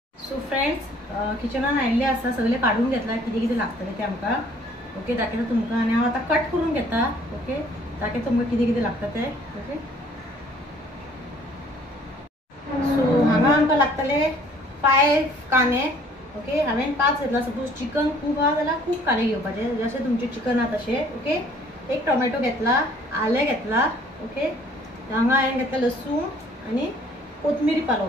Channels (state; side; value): normal; both; correlation 0.57